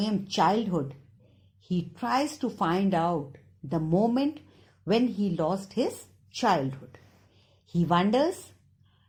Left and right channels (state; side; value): identical; both; correlation 1.00